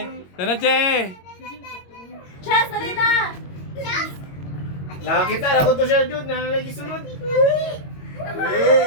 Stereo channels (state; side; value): late; right; 22 ms